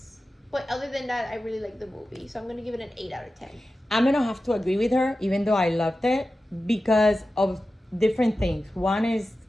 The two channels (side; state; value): both; normal; correlation 0.94